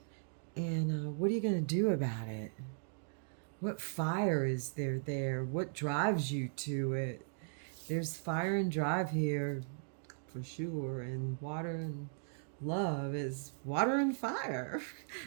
what are you going to do about it? What fire is there? What drives you to it? There's fire and drive here for sure, and water and love is water and fire.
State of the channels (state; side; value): silent; left; digital silence